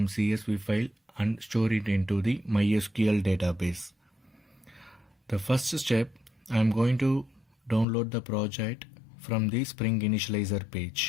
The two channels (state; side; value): drops out; right; at 7.9 s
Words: CSV file and store it into the MySQL database. The first step, I am going to download the project from the Spring Initializer